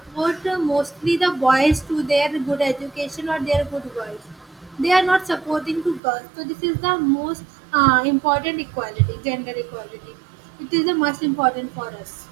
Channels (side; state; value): left; drops out; at 6.0 s